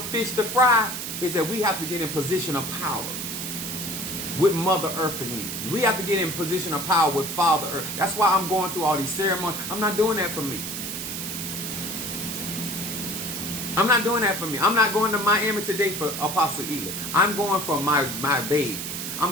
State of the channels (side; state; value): right; noise; hiss, 5 dB below the sound